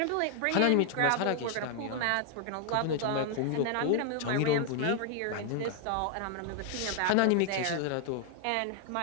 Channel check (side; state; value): both; different; correlation 0.00